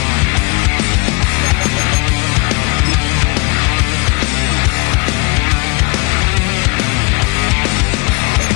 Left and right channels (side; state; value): right; quieter; 29.2 dB